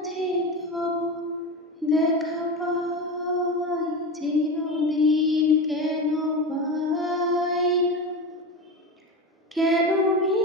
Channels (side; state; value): both; normal; correlation 0.23